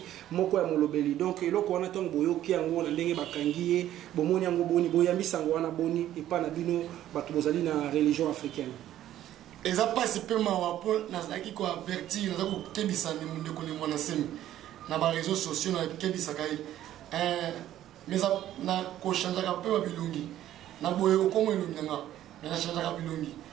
moko ya molobeli donc eloko wana tongo boyoki yango na ndenge bakangi ye bomoni yango boni boyambisa yango wana boni epa na bino bato bozali na religion africaine eza pasi pe mawa po nazaki ko avertir nazaki ko kebisa ni ndeko ni mwana semi na ba réseaux sociaux na kebisa kai mais na ko chanjaka pe ba bilungi na boyo ko mo elungi nga na chanjaka bilungi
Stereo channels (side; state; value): left; quieter; 12.6 dB